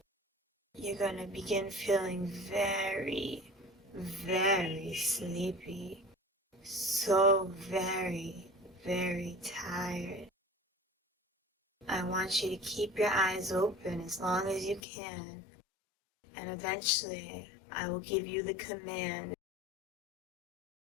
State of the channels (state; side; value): drops out; right; at 14.8 s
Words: you're going to begin feeling very, very sleepy. So very, very tired. I want you to keep your eyes open as long as you can, and eventually I will give you the command.